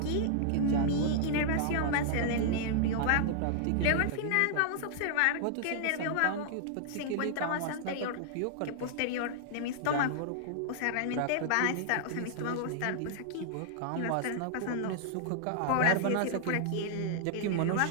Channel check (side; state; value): both; different; correlation -0.01